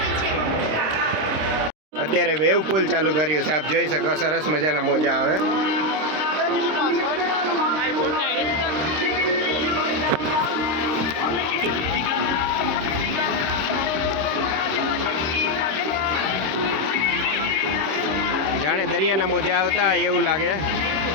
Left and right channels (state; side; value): late; left; 26 ms